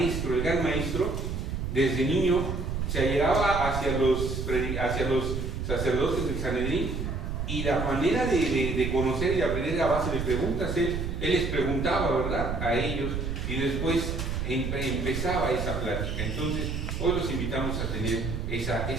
gran maestro, desde niño, se allegaba hacia los sacerdotes del Sanedrín, y la manera de conocer y aprender a base de preguntas. Él les preguntaba, ¿verdad?, a ellos, y después empezaba esa plática. Entonces, hoy los invitamos a tener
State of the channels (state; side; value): noise; right; rumble, 3 dB below the sound